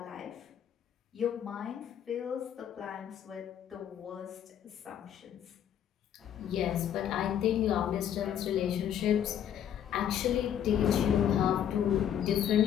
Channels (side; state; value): right; quieter; 9.7 dB